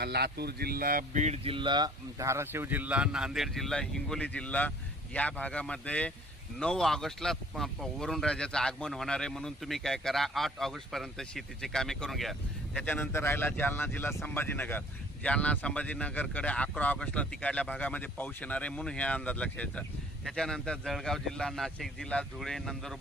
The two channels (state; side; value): normal; both; correlation 0.54